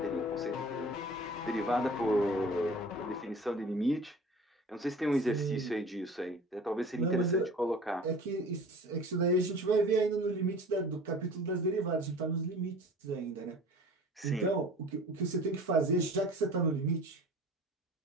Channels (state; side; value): normal; both; correlation 0.42